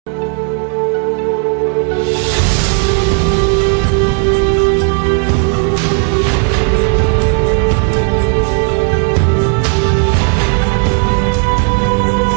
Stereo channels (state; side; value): quieter; left; 39.7 dB